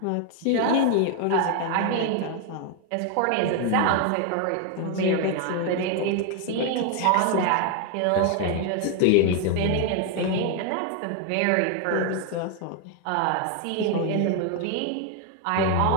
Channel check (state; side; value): different; both; correlation 0.01